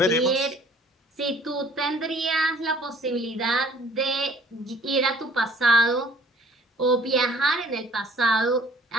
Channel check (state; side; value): normal; both; correlation 0.54